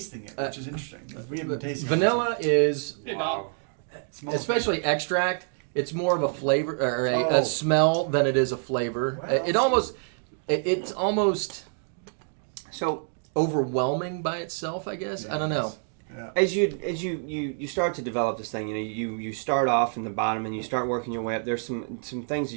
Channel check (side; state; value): left; silent; 60 dB below the other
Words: it, which is interesting. We haven't been tasting vanilla is, Hey, Bob. it. Smells especially extract, it's more of a flavor or Oh. a smell than it is a flavor. Well, It's almost So overwhelming by itself, I guess. I don't know. Yeah. as you start to develop this thing, you start off in the bottom and you start working your way up. There's some things that